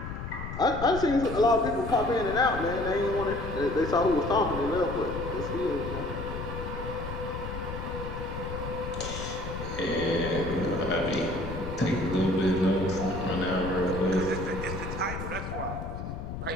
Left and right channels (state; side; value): noise; left; rumble, 7 dB below the sound